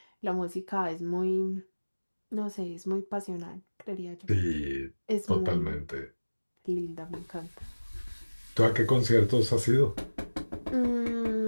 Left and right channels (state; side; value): inverted; both; correlation -1.00